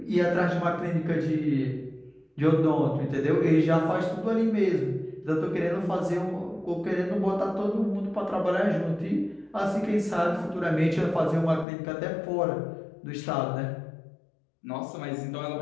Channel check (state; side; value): drops out; right; at 11.7 s